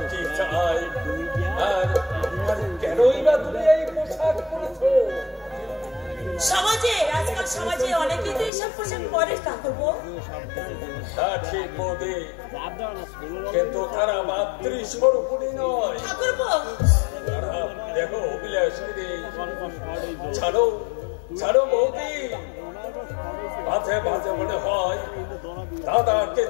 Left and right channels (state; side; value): drops out; right; at 8.5 s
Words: কি চাই, আর কেনই বা তুমি এই পোশাক পরেছো? সমাজে আজকাল সমাজে অনেকেই তো এইসব পোশাক পরে ঠাকুরপো। তা ঠিক বৌদি, কিন্তু তারা মাতৃস্বরূপিণী নয় ঠাকুরপো। তারা দেখো অভিলাষিনী। ছাড়ো ছাড়ো বৌদি, মাঝে মাঝে মনে হয় দাদাকে